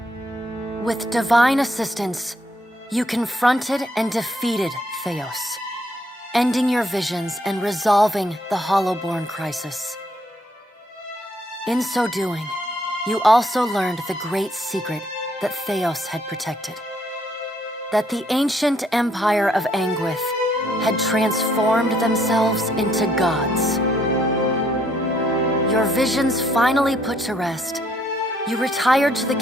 With divine assistance, you confronted and defeated Theos, ending your visions and resolving the Hollowborn crisis. In so doing, you also learned the great secret that Theos had protected. That the ancient empire of Anguith had transformed themselves into gods. Your visions finally put to rest, you retired to the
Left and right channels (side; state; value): both; normal; correlation 0.69